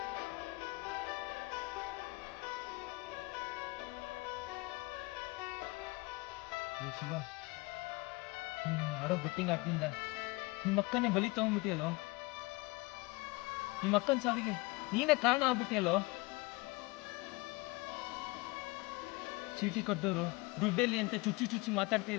ಶಿವ, ನೀನು ಆಡೋ ಬೆಟ್ಟಿಂಗ್ ಆಡ್ತಿಂದ ನಿಮ್ಮ ಅಕ್ಕನೇ ಬಲಿ ತಗೊಂಡ್ಬಿಟ್ಟಿಯಲ್ಲೋ. ನಿಮ್ಮ ಅಕ್ಕನ ಸಾವಿಗೆ ನೀನೇ ಕಾರಣ ಆಗ್ಬಿಟ್ಟಿಯಲ್ಲೋ. ಚೀಟಿ ಕೊಟ್ಟವರು ದುಡ್ಡಲ್ಲಿ ಅಂತ ಚುಚ್ಚಿ ಚುಚ್ಚಿ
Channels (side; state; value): right; quieter; 24.3 dB